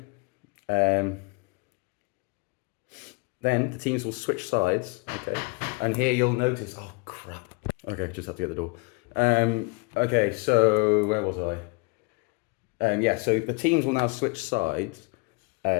the teams will switch sides, okay? And here you'll notice, oh crap. Okay, just have to get the door. Okay, so where was I? Yeah, so the teams will now switch sides,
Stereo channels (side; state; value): right; quieter; 29.2 dB